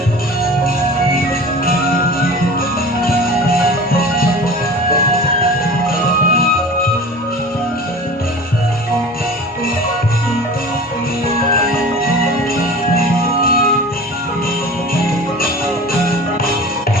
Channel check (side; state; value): both; normal; correlation 0.38